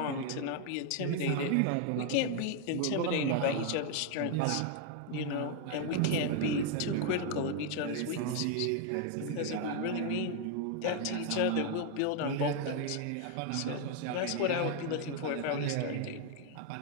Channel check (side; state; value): both; different; correlation 0.00